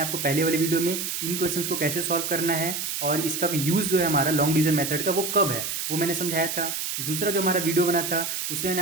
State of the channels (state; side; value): noise; right; hiss, 3 dB below the sound